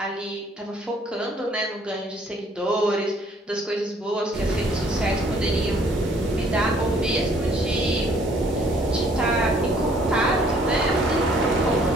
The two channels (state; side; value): normal; both; correlation 0.61